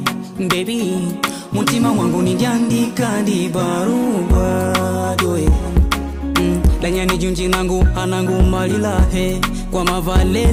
Baby, mutima wangu nindiandika di barua doe. Lanyani junji nangu anangu malilahe. Kwa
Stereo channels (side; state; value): both; identical; correlation 1.00